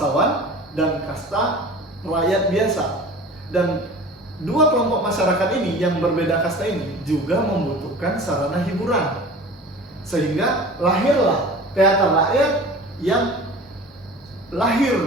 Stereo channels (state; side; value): normal; both; correlation 0.40